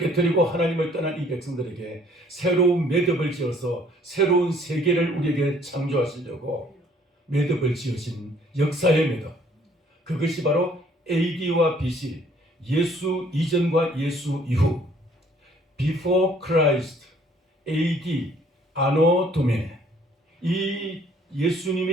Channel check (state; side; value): normal; both; correlation 0.60